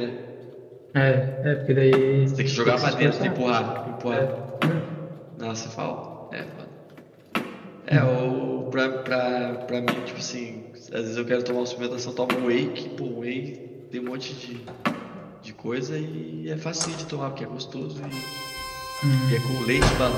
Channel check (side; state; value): both; identical; correlation 1.00